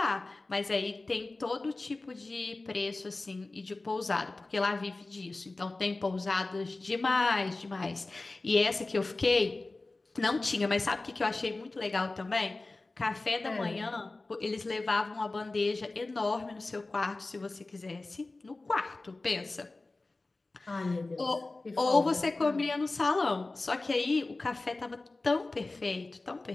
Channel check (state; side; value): quieter; right; 3.2 dB